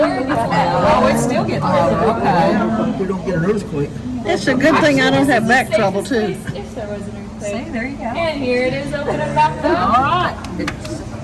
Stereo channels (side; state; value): both; identical; correlation 1.00